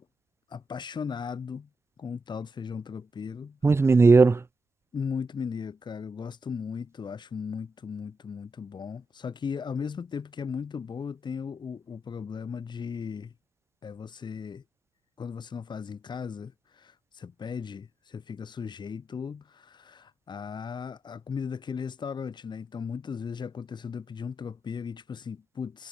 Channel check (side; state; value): both; normal; correlation 0.86